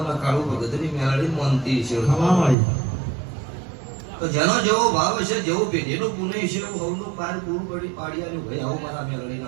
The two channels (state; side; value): drops out; left; at 2.6 s